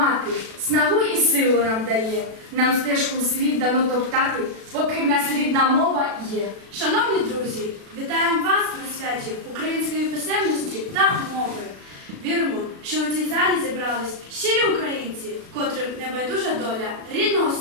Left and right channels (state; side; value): late; left; 36 ms